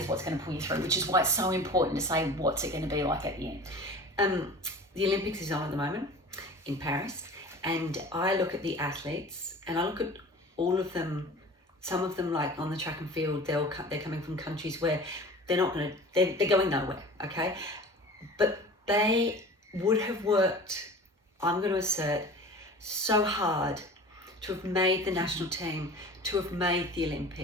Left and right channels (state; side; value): normal; both; correlation 0.39